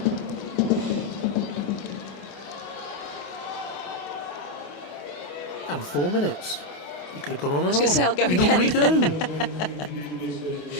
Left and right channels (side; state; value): right; late; 28 ms